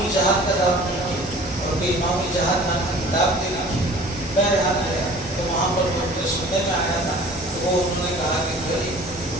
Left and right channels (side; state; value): both; normal; correlation 0.47